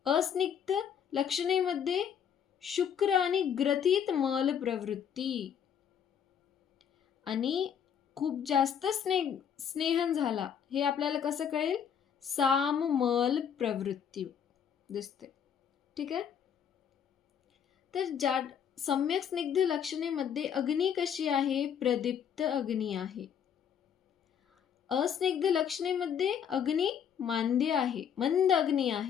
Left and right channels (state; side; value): quieter; right; 8.2 dB